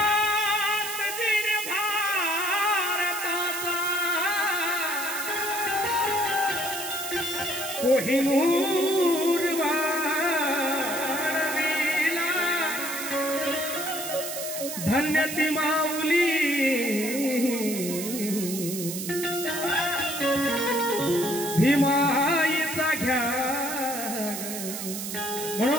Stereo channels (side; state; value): right; noise; hiss, 6 dB below the sound